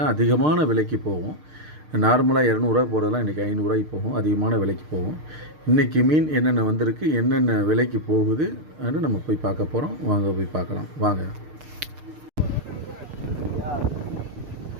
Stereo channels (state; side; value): late; left; 6.6 ms